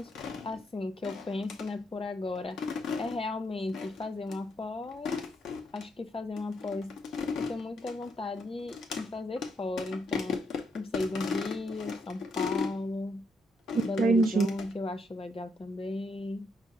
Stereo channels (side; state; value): both; normal; correlation 0.76